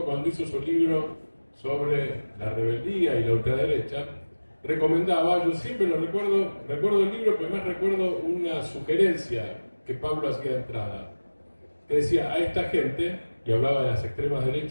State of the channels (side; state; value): both; inverted; correlation -1.00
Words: cuando hizo su libro sobre la rebeldía y la ultraderecha, recomendaba, yo siempre lo recuerdo el libro, pero además recuerdo una sugerencia que Pablo hacía de entrada, que decía a esta gente, y hablaba de las extremas